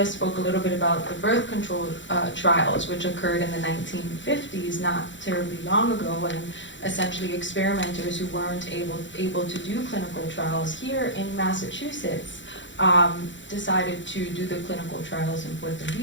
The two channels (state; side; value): late; right; 0.54 ms